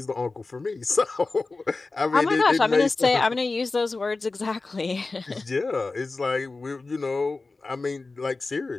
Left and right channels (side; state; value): right; quieter; 3.6 dB